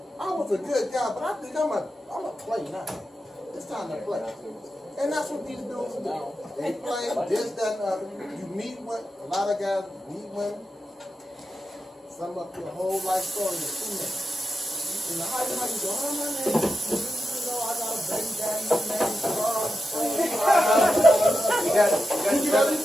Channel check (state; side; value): normal; both; correlation 0.89